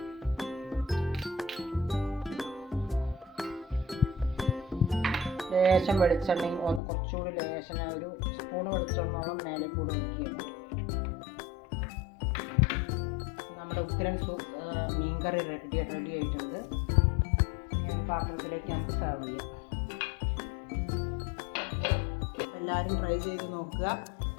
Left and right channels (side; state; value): right; drops out; at 6.8 s